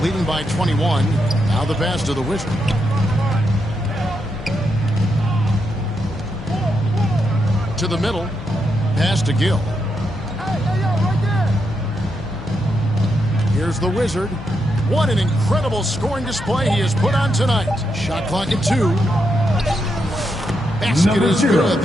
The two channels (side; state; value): both; normal; correlation 0.82